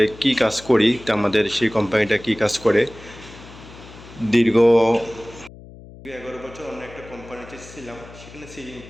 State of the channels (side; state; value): left; noise; hum, 18 dB below the sound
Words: কি কাজ করি, তা আমাদের সেই কোম্পানিটা কি কাজ করে। দীর্ঘ 11 বছর অন্য একটা কোম্পানিতে ছিলাম, সেখানে সিলিং